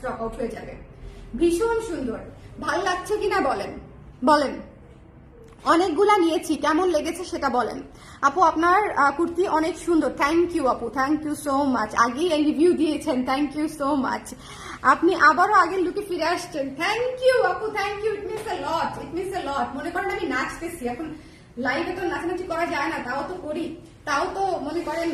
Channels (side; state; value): both; identical; correlation 1.00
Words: আউট হয়ে যাবে। ভীষণ সুন্দর, ভাল লাগছে কিনা বলেন, বলেন। অনেকগুলা নিয়েছি, কেমন লেগেছে সেটা বলেন। আপু আপনার কুর্তি অনেক সুন্দর, থ্যাংক ইউ আপু, থ্যাংক ইউ সো মাচ। আগেই এই রিভিউ দিয়েছেন, থ্যাংক ইউ সো মাচ। আপনি আবারও আগের লুকে ফিরে আসছেন, থ্যাংক ইউ আপু, thank you. It means a lot, it means a lot. মনে করেন আমি নাচতেছি এখন, লাইভে তো নাচানাচি করা যায় না, তাও তো করি, তাও তো মনে করেন।